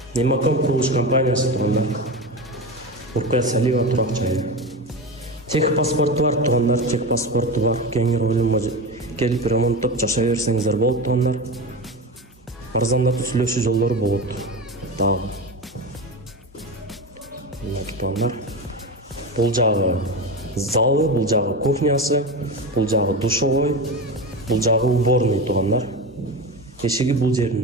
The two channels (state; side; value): normal; both; correlation 0.23